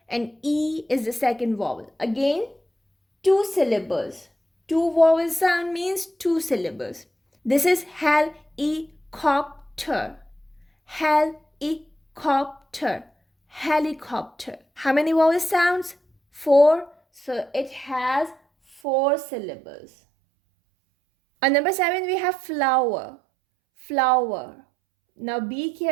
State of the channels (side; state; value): left; drops out; at 18.8 s